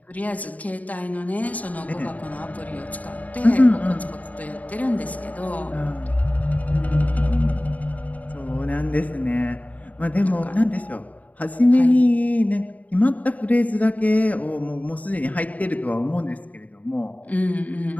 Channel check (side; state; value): right; late; 0.073 ms